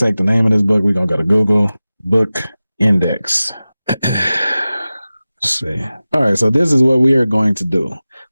the name of this book. We're gonna go to Google Book Index. Let's see. All right, so this is what we are going to do.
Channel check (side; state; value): both; inverted; correlation -0.96